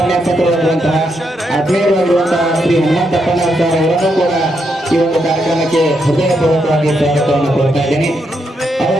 ಆತ್ಮೀಯರಾಗಿರುವಂತಹ ಶ್ರೀ ಹನುಮಂತಪ್ಪನವರ ಅವರನ್ನು ಕೂಡ ಈ ಒಂದು ಕಾರ್ಯಕ್ರಮಕ್ಕೆ ಹೃದಯಪೂರ್ವಕವಾಗಿ ಸ್ವಾಗತವನ್ನು ಕೋರ್ತಾ ಇದ್ದೇನೆ.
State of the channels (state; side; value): normal; both; correlation 0.80